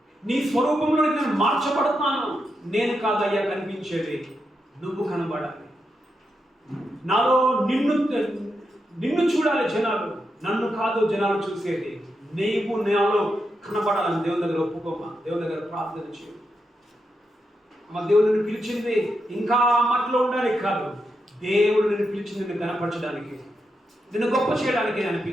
నీ స్వరూపంలో నేను మార్చబడతాను. నేను కాదయ్యా కనిపించేది, నువ్వు కనబడాలి. నాలో నిన్ను చూడాలి జనాలు, నన్ను కాదు జనాలు చూసేది. నీవు నాలో కనబడాలని దేవుని దగ్గర ఒప్పుకోమా, దేవుని దగ్గర ప్రార్థన చేయ. మా దేవుడు నిన్ను పిలిచింది ఇంకా మట్లో ఉండడానికి కాదు, దేవుడు నిన్ను పిలిచింది నిన్ను కనపరచడానికి, నిన్ను గొప్ప చేయడానికి ఆయన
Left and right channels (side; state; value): both; normal; correlation 0.85